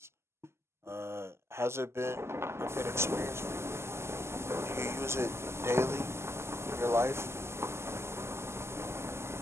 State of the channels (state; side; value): late; left; 0.13 ms